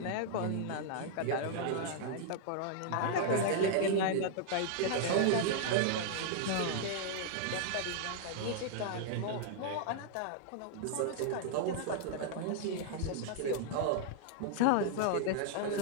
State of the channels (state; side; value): different; both; correlation -0.01